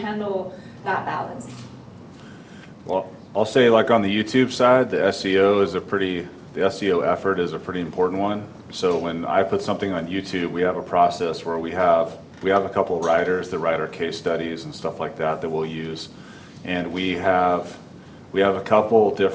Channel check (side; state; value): both; identical; correlation 1.00